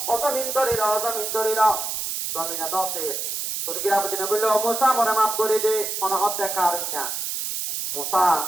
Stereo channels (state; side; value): noise; right; hiss, 3 dB below the sound